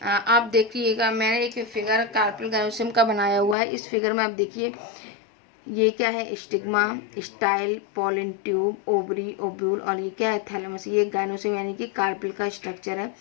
आप देखिएगा, मैंने एक फिगर कार्पेल गाइनोसियम का बनाया हुआ है। इस फिगर में आप देखिए ये क्या है, stigma, style, pollen tube, ovary, ovule और ये क्या है, थैलेमस। ये गाइनोसियम यानी कि कार्पेल का स्ट्रक्चर है।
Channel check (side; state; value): right; drops out; at 3.6 s